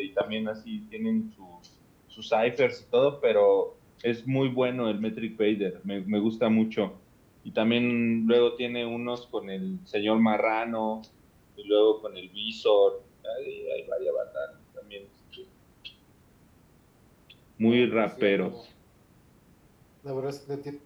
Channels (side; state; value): both; identical; correlation 1.00